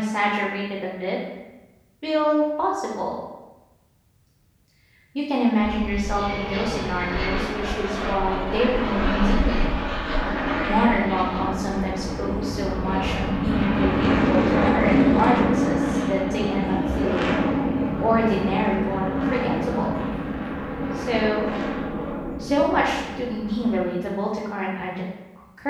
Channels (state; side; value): identical; both; correlation 1.00